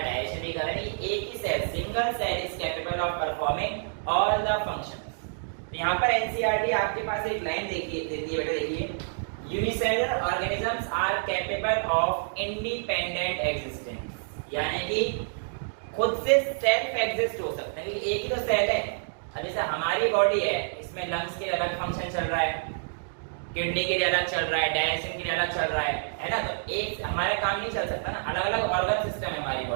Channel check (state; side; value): silent; left; digital silence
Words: डाइजेशन भी कर रहा है। एक ही cell, single cell is capable of performing all the functions. यहाँ पर एनसीईआरटी आपके पास एक लाइन देती है बेटा, देखिए, unicellular organisms are capable of independent existence, यानी कि खुद से सेल्फ एग्जिस्ट हो सकते हैं, एक ही तो सेल है। अब जैसे हमारी बॉडी है, इसमें लंग्स के अलग फंक्शन चल रहा है, किडनी के लिए अलग चल रहा है, डाइजेशन के लिए अलग चल रहा है ना। तो एक हमारे काम नहीं चल सकता ना, अलग अलग ऑर्गन सिस्टम है हमारी